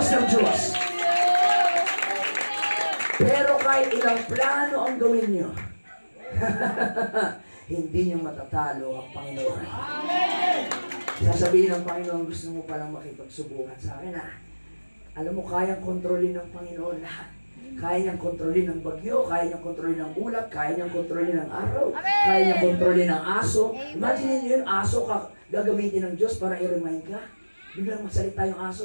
ng Diyos. Pero kahit ilang plano ang gawin nyo, hindi nyo matatalo ang Panginoon. Sasabihin ng Panginoon, gusto mo palang makipagsubukan sa akin, alam mo, kayang kontrolin ng Panginoon lahat. Kaya niyang kontrolin ng bagyo, kaya niyang kontrolin ng ulap, kaya niyang kontrolin ng araw, kaya niyang kontrolin ng aso. Imagine niyo yun, aso ka gagamitin ng Diyos para i-remind ka. Biglang masalita yung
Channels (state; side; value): inverted; both; correlation -1.00